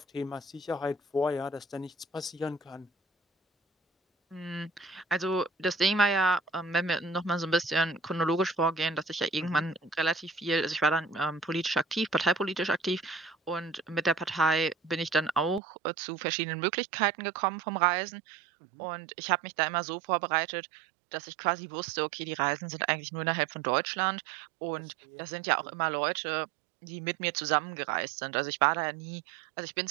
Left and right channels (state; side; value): drops out; left; at 15.6 s